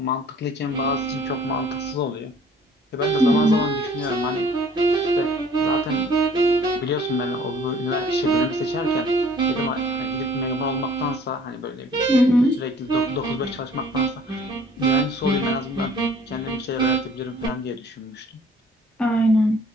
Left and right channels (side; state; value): both; normal; correlation 0.54